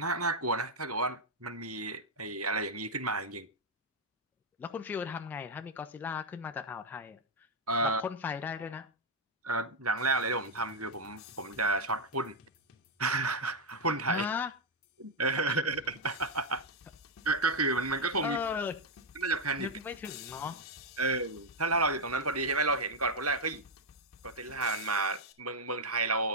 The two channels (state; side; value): normal; both; correlation 0.02